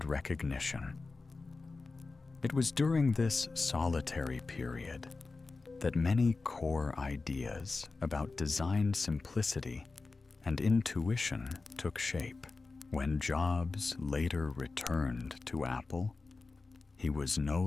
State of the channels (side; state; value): right; quieter; 3.9 dB